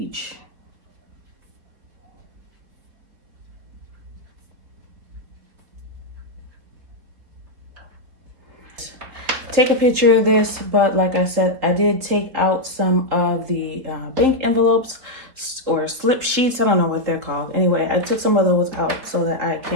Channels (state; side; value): late; left; 4.5 ms